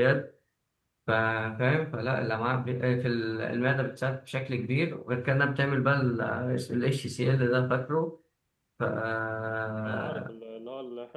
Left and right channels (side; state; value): both; identical; correlation 1.00